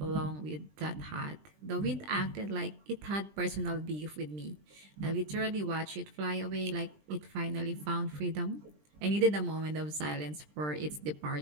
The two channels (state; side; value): late; left; 20 ms